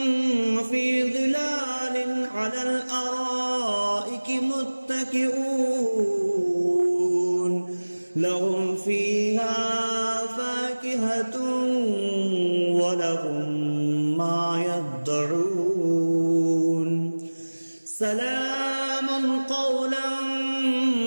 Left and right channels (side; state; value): both; inverted; correlation -1.00